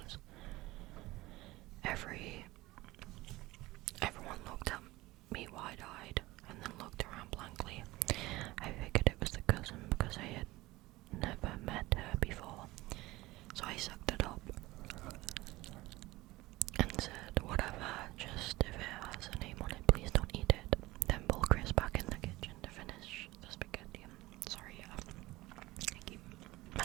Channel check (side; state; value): left; quieter; 19.3 dB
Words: Everyone looked at me wide-eyed and then looked around blankly. I figured it was the cousin because I had never met her before, so I sucked it up and said, whatever, just if it has a name on it, please don't eat it. Then pull Chris back in the kitchen to finish the spaghetti. Sorry, I keep